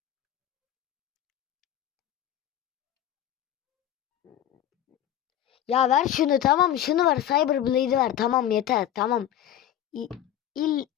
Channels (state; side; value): quieter; right; 11.3 dB